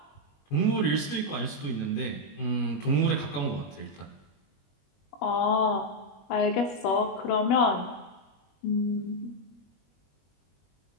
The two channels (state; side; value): late; right; 21 ms